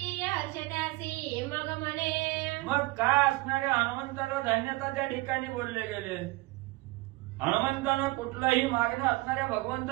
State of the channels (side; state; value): left; quieter; 21.6 dB